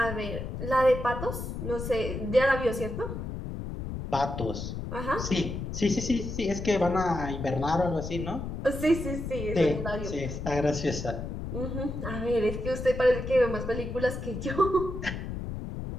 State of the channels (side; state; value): left; noise; rumble, 6 dB below the sound